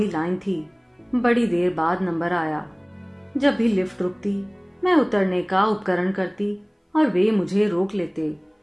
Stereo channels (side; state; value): both; identical; correlation 1.00